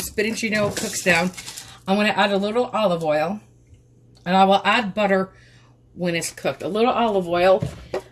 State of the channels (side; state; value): both; identical; correlation 1.00